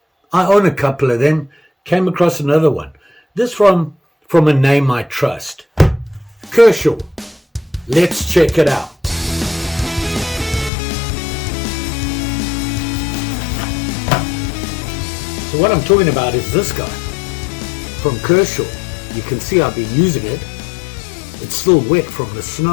I own a couple of them. Came across another one. This from a name I trust. Kershaw. Let's check it out. So what I'm talking about is this guy from Kershaw. You can see I've been using it. It's still wet from the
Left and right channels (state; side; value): drops out; right; at 10.7 s